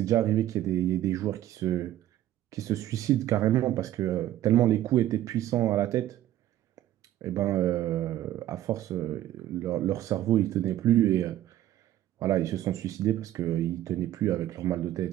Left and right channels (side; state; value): left; quieter; 13.3 dB